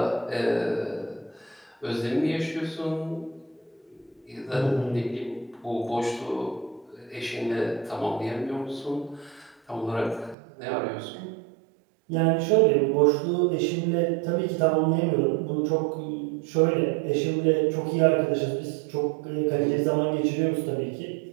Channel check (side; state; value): left; drops out; at 10.4 s